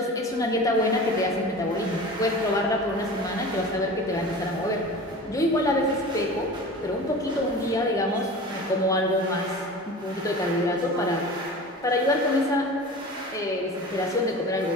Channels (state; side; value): normal; both; correlation 0.36